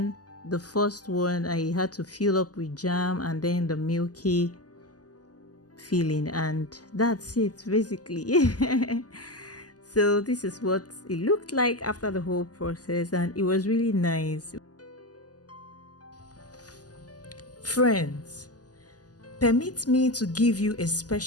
the first one I had to fill up with jam and then the milky filling, and that's it basically. So this is what it looked like after the whole process, and it was really nice. Friends, permit me to give you a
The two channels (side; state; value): right; late; 0.67 ms